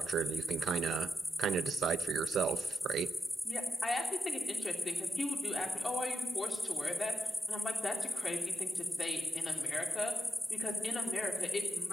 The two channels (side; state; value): both; normal; correlation 0.86